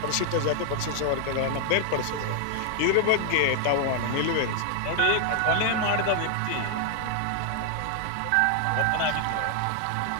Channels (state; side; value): different; both; correlation 0.00